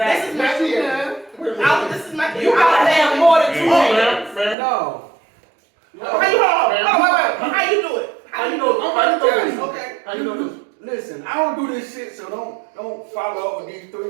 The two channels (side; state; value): left; drops out; at 4.5 s